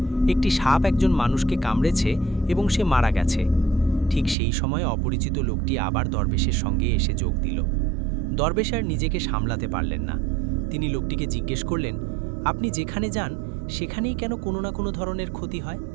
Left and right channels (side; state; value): left; drops out; at 4.4 s